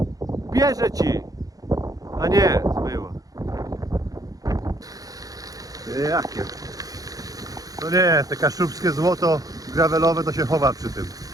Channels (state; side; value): late; left; 0.17 ms